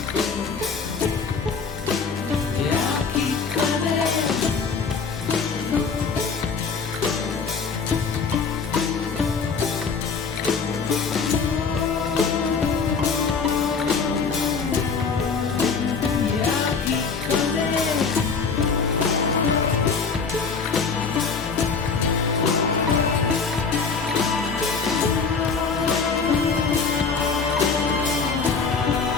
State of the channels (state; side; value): quieter; right; 5.2 dB